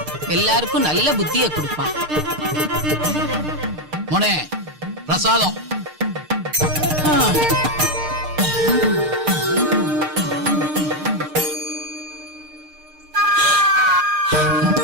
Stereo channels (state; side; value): late; left; 6.6 ms